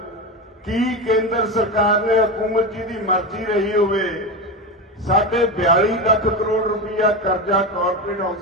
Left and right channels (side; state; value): both; normal; correlation 0.19